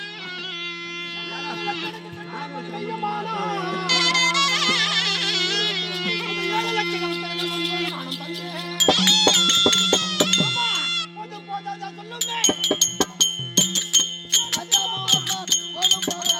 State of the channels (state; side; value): identical; both; correlation 1.00